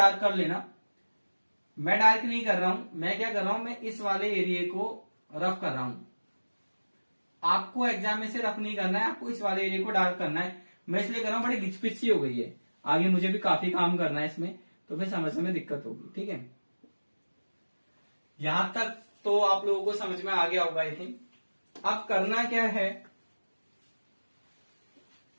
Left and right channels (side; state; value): both; inverted; correlation -1.00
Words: कर लेना। मैं डार्क नहीं कर रहा हूं, मैं क्या कर रहा हूं, मैं इस वाले एरिया को रफ कर रहा हूं। आपको एग्जाम में से रफ नहीं करना है, आपको इस वाले एरिया को डार्क करना है। मैं इसलिए कर रहा हूं, बड़ी घिचपिच सी हो गई है, आगे मुझे भी काफी काम करना है इसमें, तो फिर समझने में दिक्कत होगी। ठीक है, यहां तक तो आप लोगों को समझ में आ गया होगा आई थिंक। अब करना क्या है,